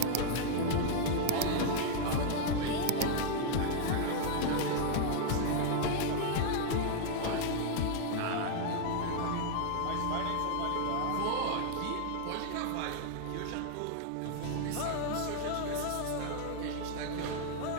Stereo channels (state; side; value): different; both; correlation 0.00